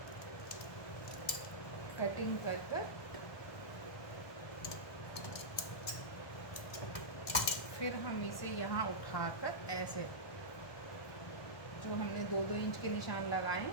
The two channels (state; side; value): late; right; 1.7 ms